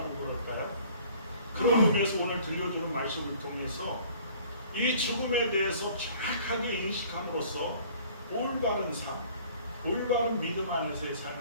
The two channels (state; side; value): inverted; both; correlation -0.52